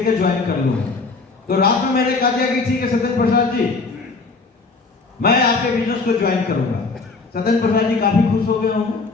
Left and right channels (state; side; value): quieter; right; 4.0 dB